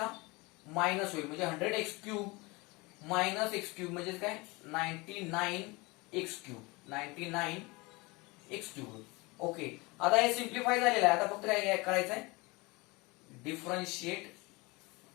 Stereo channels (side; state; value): right; quieter; 25.0 dB